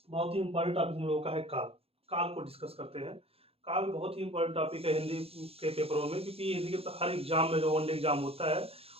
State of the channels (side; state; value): left; late; 0.28 ms